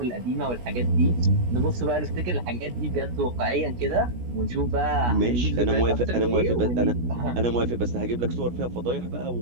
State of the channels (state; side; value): late; left; 17 ms